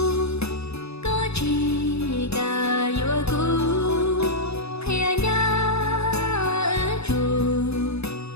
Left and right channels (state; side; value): late; right; 0.79 ms